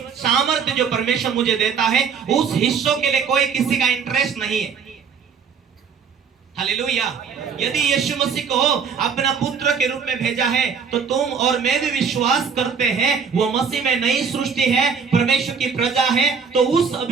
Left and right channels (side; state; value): left; quieter; 6.1 dB